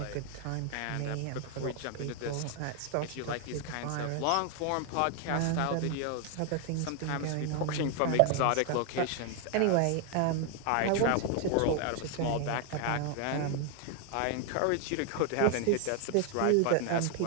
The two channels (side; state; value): both; different; correlation 0.00